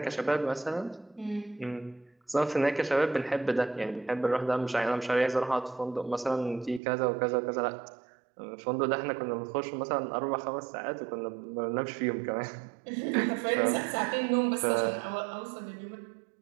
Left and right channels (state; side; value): drops out; left; at 6.8 s